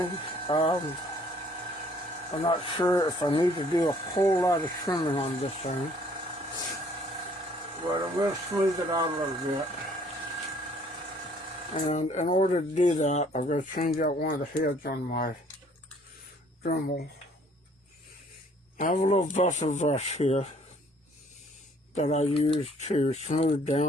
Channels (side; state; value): both; normal; correlation 0.60